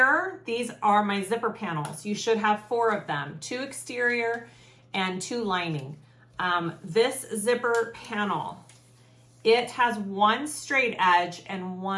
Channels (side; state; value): both; identical; correlation 1.00